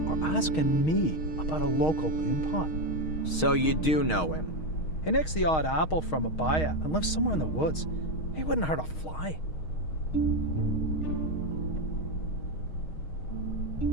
are asking me about a local loon pot? So you do know him? He nicks the odd apple from a buyer and lives somewhere in the woods. He wouldn't hurt a fly.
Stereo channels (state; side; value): late; right; 6.4 ms